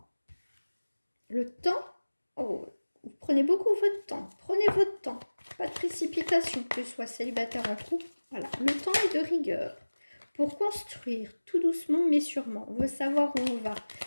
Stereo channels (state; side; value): inverted; both; correlation -1.00